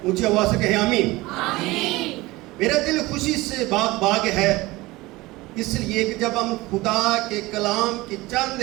اونچی آواز سے کہیں آمین۔ آمین۔ میرا دل خوشی سے باغ باغ ہے، اس لیے کہ جب ہم خدا کے کلام کی چند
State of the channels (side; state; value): left; quieter; 20.4 dB